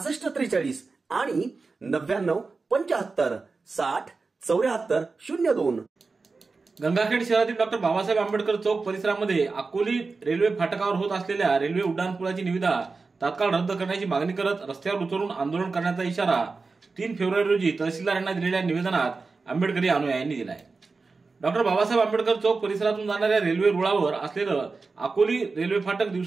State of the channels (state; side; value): quieter; left; 4.2 dB